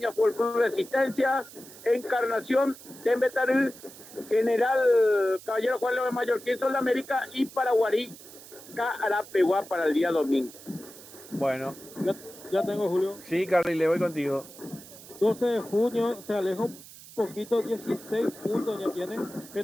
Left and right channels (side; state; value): right; noise; hiss, 18 dB below the sound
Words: Fútbol Club Resistencia, Encarnación, Tembetaril, General Caballero Juan León Mallorquín, Sol de América y Paraguarí, Carapeguá para el día domingo. Bueno. Ya tengo, Julio. Sí, Carlile, voy contigo. 12 de junio se aleja un poquito, 16 puntos ya tiene.